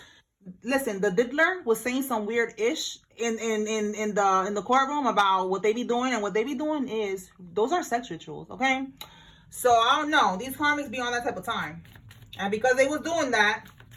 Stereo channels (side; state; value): both; identical; correlation 1.00